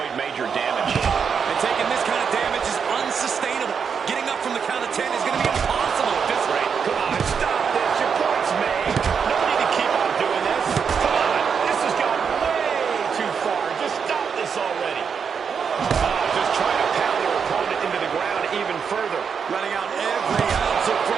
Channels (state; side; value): quieter; left; 6.5 dB